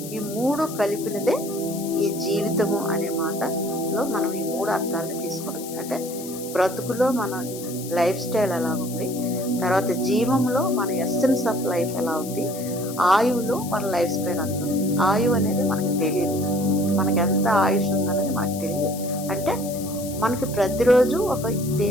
ఈ మూడు కలిపినదే ఈ జీవితము అనే మాటలో మనం ఈ మూడు అర్థాలను తీసుకోవాలి. అంటే బ్రతుకులో మన లైఫ్ స్టైల్ ఎలా ఉంది, తర్వాత జీవంలో మన ఎస్సెన్స్ ఆఫ్ లైఫ్ ఎలా ఉంది, ఆయువులో మన లైఫ్ స్పాన్ అంత ఉంది. ఆయువు అనేది మనకు తెలియదు, మనకి ఎంత ఆయుష్ ఉందనేది మనకు తెలియదు. అంటే మనకి ప్రతిరోజు ఒక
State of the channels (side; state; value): left; noise; hiss, 12 dB below the sound